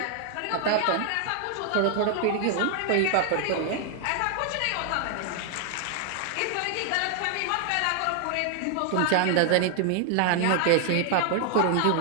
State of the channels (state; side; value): different; both; correlation 0.00